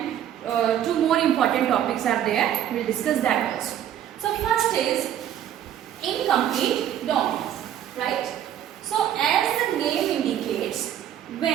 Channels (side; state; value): left; quieter; 10.6 dB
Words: two more important topics are there. We will discuss that also. So first is incomplete dominance, right? So as the name indicates,